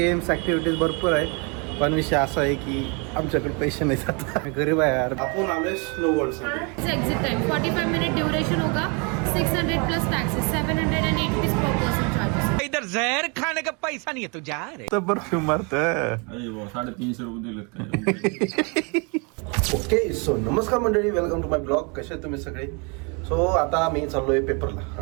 activities भरपूर आहे, पण विषय असा आहे की आमच्याकडे पैसे नाही जात, गरीब आहे यार. आपण आलोय स्नो वर्ल्डसाठी. एग्जिट टाइम 45 मिनट ड्यूरेशन होगा, 600 plus taxes, 780 rupees per person charges. इधर जहर खाने का पैसा नहीं है तू जा रे. तर परफ्यूम मारत. 350 रुपये दिलेत. ओके सो नमस्कार मंडळी, वेलकम टू माय ब्लॉग. कसे आहेत तुम्ही सगळे? सो आता मी चाललोय पेपरला.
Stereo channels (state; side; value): quieter; left; 32.9 dB